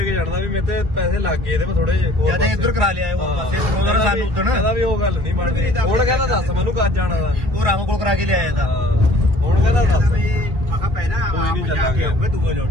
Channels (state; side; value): late; left; 2.4 ms